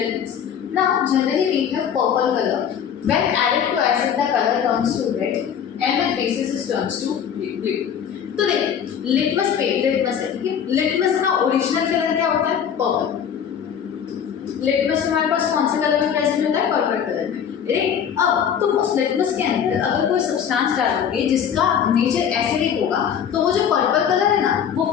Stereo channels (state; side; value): quieter; right; 8.3 dB